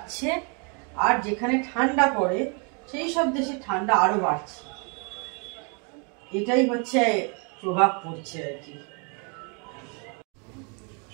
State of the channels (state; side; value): quieter; left; 36.4 dB